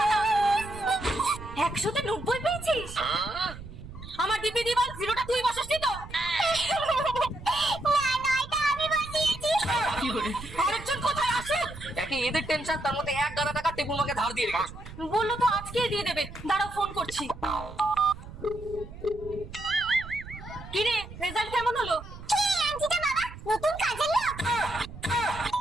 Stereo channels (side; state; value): right; noise; rumble, 13 dB below the sound